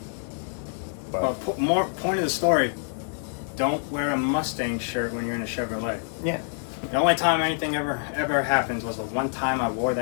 But more point of the story, don't wear a Mustang shirt when you're in a Chevrolet. Yeah. The only time anything ever happened was the one time I wore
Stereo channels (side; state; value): right; silent; digital silence